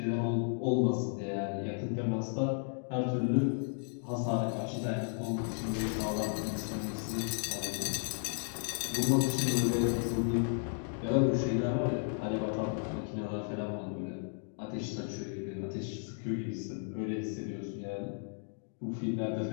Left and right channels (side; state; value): right; silent; 55 dB below the other